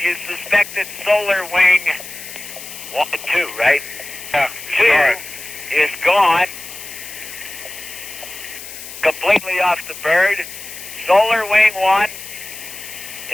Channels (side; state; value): left; noise; hiss, 12 dB below the sound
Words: you suspected solar wing 2, right? Yeah, 2 start. is gone, completely off the bird. Solar wing 1